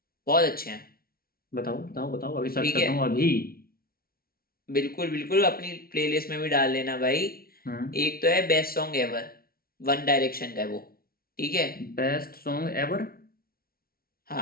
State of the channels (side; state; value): right; late; 0.44 ms